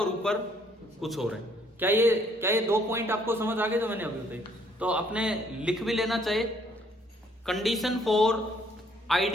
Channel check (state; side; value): normal; both; correlation 0.65